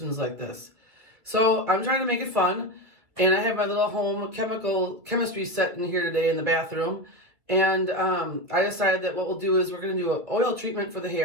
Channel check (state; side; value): late; left; 2.3 ms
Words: like this. So I'm trying to make it fun, and I have my little home chemistry set in here today in the bathroom. And I decided that what we'll do is we're going to do an oil treatment for the